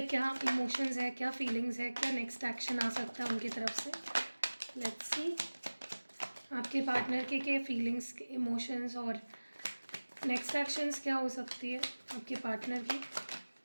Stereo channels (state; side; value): inverted; both; correlation -1.00